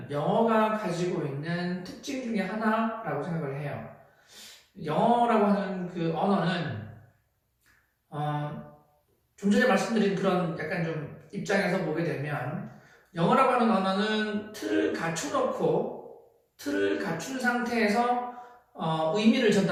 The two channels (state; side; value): identical; both; correlation 1.00